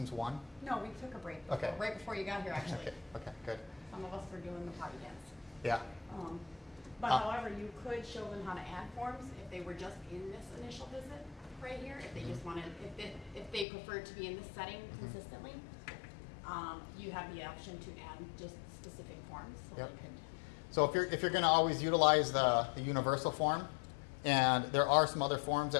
1? No, we took a break. Okay. Right before you got here, actually. Okay, good. Some of us were doing the potty dance. Yeah. But however, you could show them how to add forms if they were just in this initial visit right here. If they just wanted, if they preferred to be in this setting consistently, you have the option to add just specific forms. So Yep. they could. So if you're going to always utilize the universal form, and there are some other forms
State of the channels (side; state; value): right; drops out; at 13.7 s